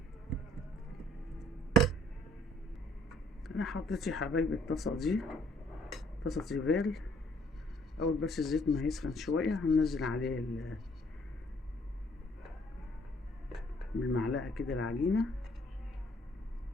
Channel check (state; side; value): normal; both; correlation 0.62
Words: انا حطيت يا حبايبي الطاسة دي طاسة تيفال. اول بس الزيت ما يسخن شوية هننزل عليه بالمعلقة كده العجينة،